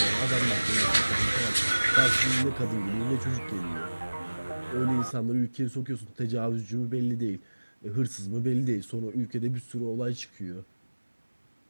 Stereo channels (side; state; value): both; inverted; correlation -1.00